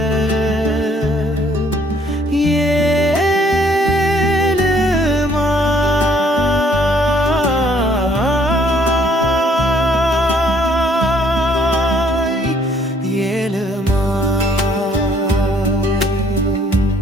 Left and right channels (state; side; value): normal; both; correlation 0.63